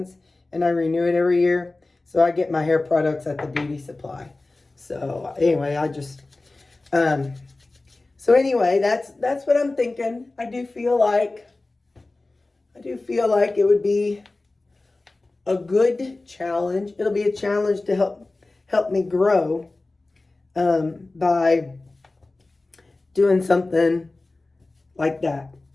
and I renew it every year. So I get my hair products at the beauty supply. So anyway, so anyway, that's what I'm thinking. I do feel like it would be a good challenge. It'll be a challenge to help me grow by doing something like that.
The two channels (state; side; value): quieter; right; 3.2 dB